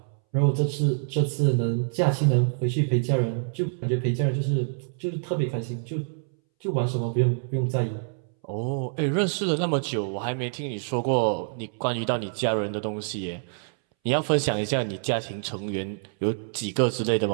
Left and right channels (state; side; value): silent; left; 61 dB below the other